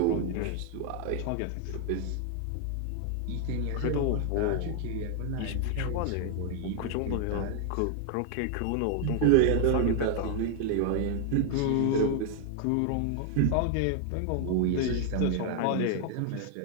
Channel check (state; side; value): different; both; correlation 0.00